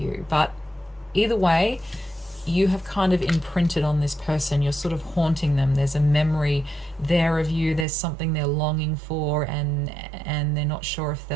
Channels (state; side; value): drops out; left; at 7.9 s